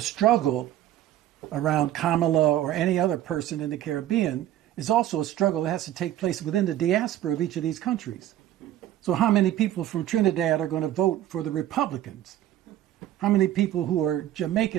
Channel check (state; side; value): quieter; left; 12.7 dB